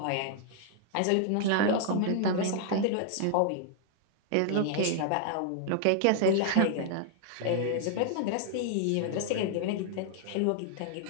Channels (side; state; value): both; different; correlation 0.00